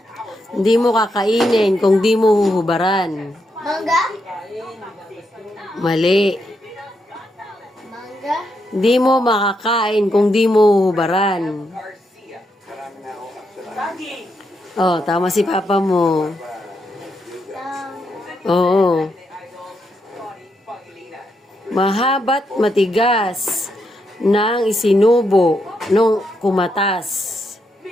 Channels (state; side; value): normal; both; correlation 0.81